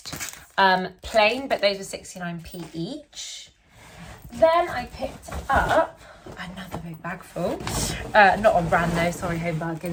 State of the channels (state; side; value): identical; both; correlation 1.00